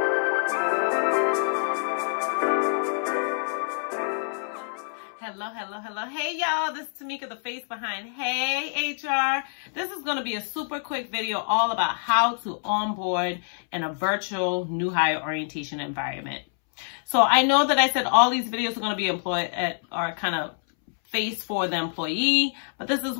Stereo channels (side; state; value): right; silent; 61 dB below the other